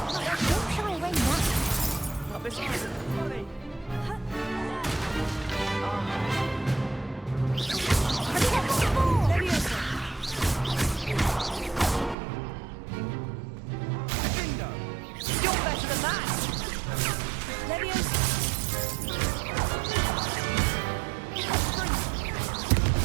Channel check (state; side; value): drops out; left; at 12.2 s